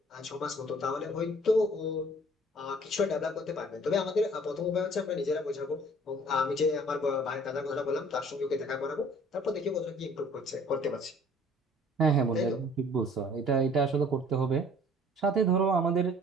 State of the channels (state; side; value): normal; both; correlation 0.53